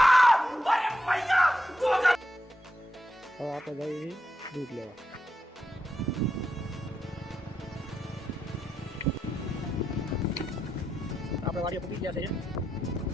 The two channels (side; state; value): both; normal; correlation 0.85